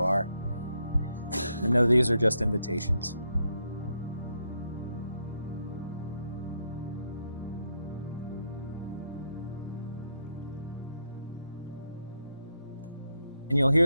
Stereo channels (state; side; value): inverted; both; correlation -0.78